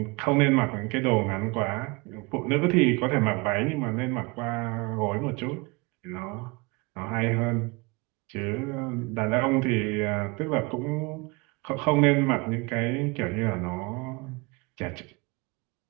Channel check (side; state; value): left; quieter; 26.8 dB